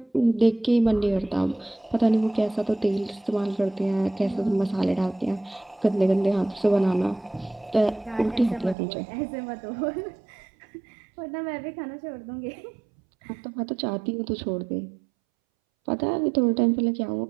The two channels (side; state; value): left; drops out; at 8.8 s